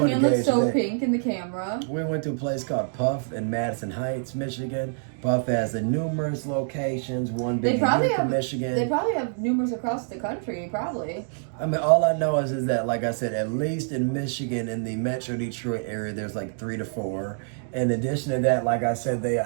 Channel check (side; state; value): left; silent; digital silence